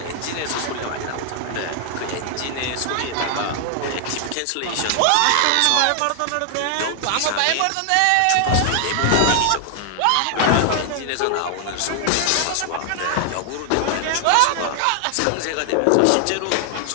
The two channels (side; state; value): both; different; correlation 0.00